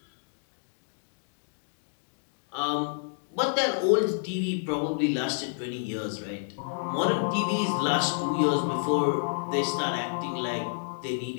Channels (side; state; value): right; silent; digital silence